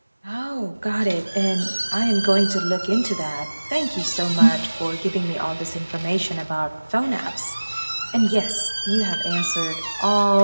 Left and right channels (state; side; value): inverted; both; correlation -1.00